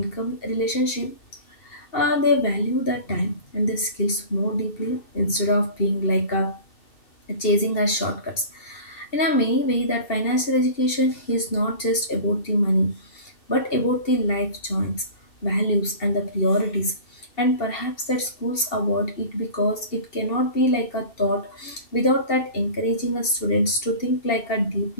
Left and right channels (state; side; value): late; right; 2.7 ms